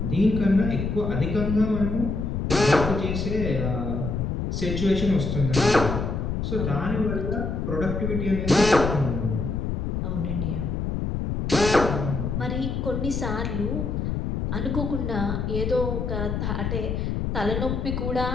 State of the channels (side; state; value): left; noise; rumble, 2 dB below the sound